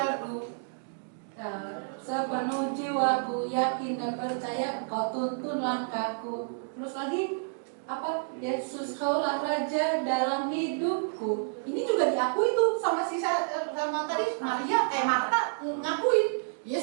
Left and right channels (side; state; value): left; silent; digital silence